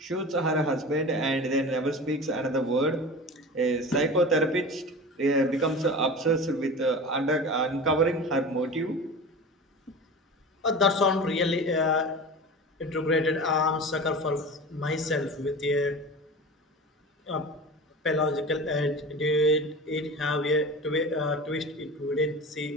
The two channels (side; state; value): both; normal; correlation 0.33